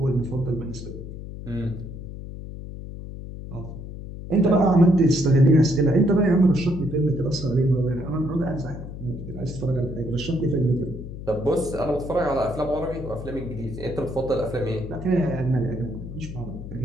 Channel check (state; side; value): noise; left; hum, 10 dB below the sound